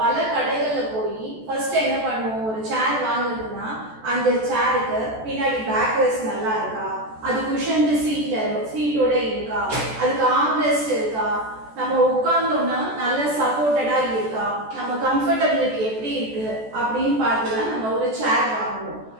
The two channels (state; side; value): late; left; 14 ms